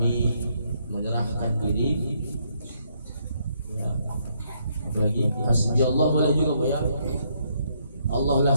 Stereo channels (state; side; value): inverted; both; correlation -0.73